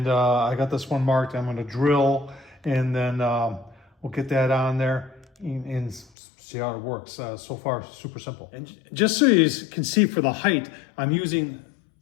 I got this one marked. I'm going to drill, and then we'll get that on there and see how it works. So far, super simple. And just so you can see for the height, I'm using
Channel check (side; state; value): right; drops out; at 6.1 s